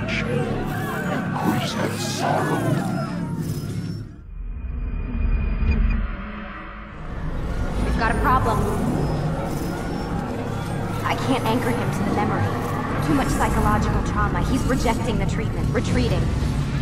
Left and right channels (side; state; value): both; identical; correlation 1.00